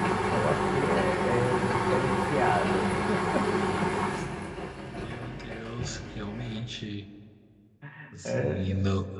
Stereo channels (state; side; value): identical; both; correlation 1.00